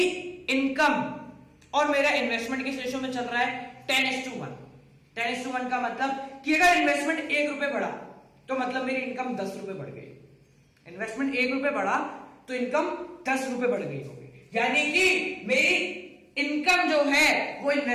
इनकम और मेरा इन्वेस्टमेंट किस रेशियो में चल रहा है? 10:1। 10:1 का मतलब कि अगर इन्वेस्टमेंट 1 रुपए बढ़ा तो मतलब मेरी इनकम 10 रुपए बढ़ गई। इन्वेस्टमेंट 1 रुपए बढ़ा तो इनकम 10 रुपए बढ़ गई होगी, यानी कि मेरी इनकम जो है वो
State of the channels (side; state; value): both; identical; correlation 1.00